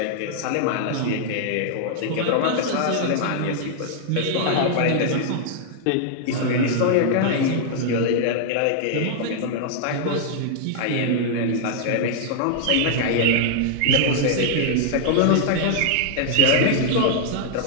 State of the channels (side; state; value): both; different; correlation -0.01